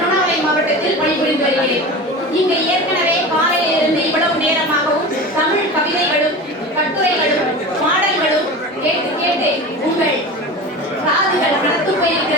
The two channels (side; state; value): both; normal; correlation 0.31